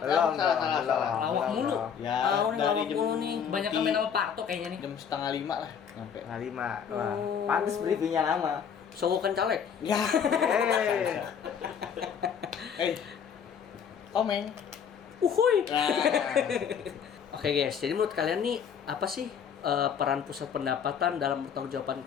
Salah. Lawak mulu. Ya, Nih dari lawak jam mulu nih. Kebanyakan main sama Parto kayaknya nih. jam 4:30 lah nyampe. Setengah 5. Wah, Oh. pantes briefingnya lama. Sogokan caleg. Ya. Eh, Komeng. Uhuy. Nah, Oke guys, jadi menurut kalian nih apa sih peran pusat pendapatan dalam pertanggungjawaban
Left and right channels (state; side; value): quieter; right; 7.5 dB